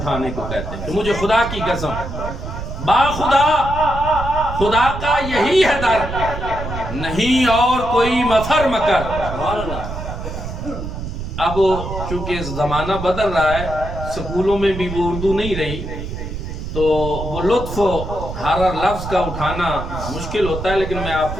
کو کہتے ہیں کہ مجھے خدا کی قسم، با خدا، خدا کا یہی ہے در، نہیں اور کوئی مفر مکر۔ اب چونکہ زمانہ بدل رہا ہے، سکولوں میں بھی وہ اردو نہیں رہی، تو وہ لطف ہر لفظ کا اٹھانا مشکل ہوتا ہے، لیکن میں آپ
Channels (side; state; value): right; noise; rumble, 7 dB below the sound